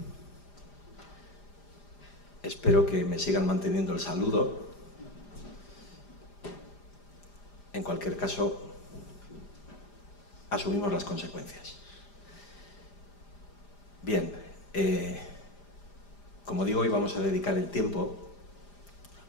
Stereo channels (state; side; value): late; right; 4.9 ms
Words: Espero que me sigan manteniendo el saludo. En cualquier caso, asumimos las consecuencias. Bien, como digo, hoy vamos a dedicar el tiempo